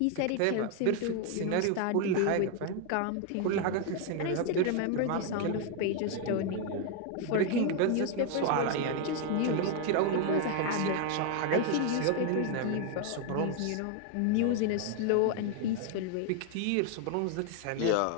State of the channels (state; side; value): different; both; correlation 0.01